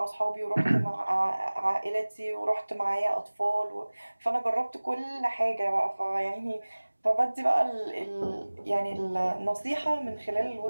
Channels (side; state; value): both; inverted; correlation -1.00